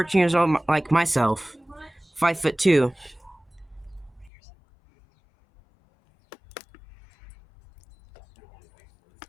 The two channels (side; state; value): right; drops out; at 4.3 s